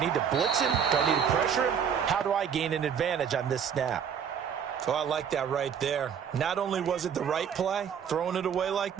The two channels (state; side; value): quieter; left; 7.8 dB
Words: to blitz him? Do I need to pressure him? How do I gain an advantage on this snap? So I like that right there. Not only was it the right play, throwing it away like